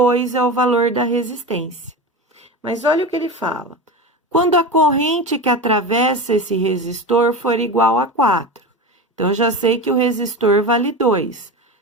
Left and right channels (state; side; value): normal; both; correlation 0.26